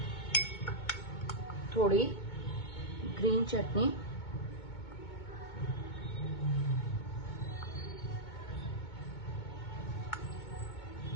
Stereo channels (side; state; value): right; late; 2.2 ms